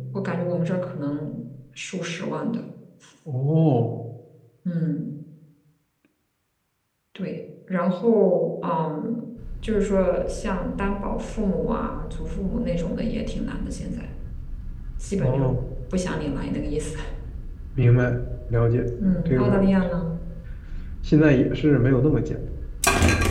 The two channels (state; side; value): identical; both; correlation 1.00